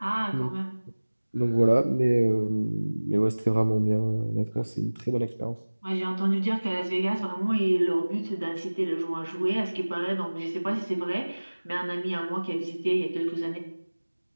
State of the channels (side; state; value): both; inverted; correlation -1.00